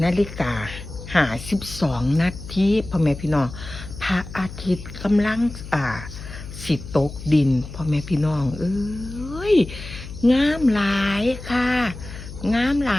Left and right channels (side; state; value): left; noise; hum, 12 dB below the sound